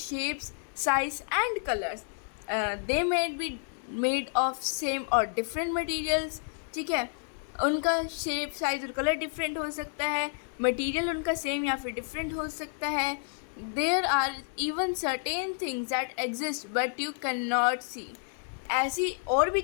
size and colors. They may be made of same or different materials. ठीक है, उनका shape, size और colour different हो सकता है, material उनका same या फिर डिफरेंट हो सकता है। There are even certain things that exist but you can not see. ऐसी और भी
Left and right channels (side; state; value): right; silent; 58 dB below the other